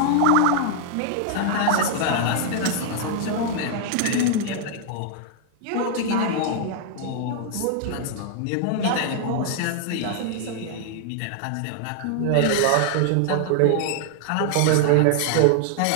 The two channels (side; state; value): both; different; correlation 0.00